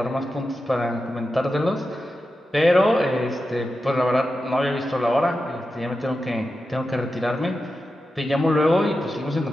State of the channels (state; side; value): normal; both; correlation 0.91